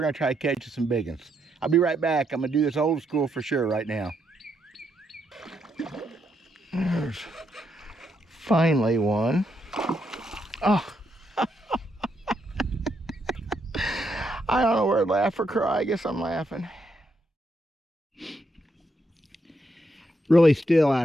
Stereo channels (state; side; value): normal; both; correlation 0.78